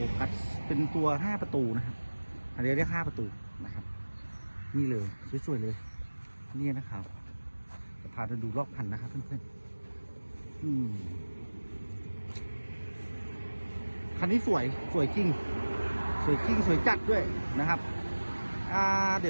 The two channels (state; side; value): inverted; both; correlation -1.00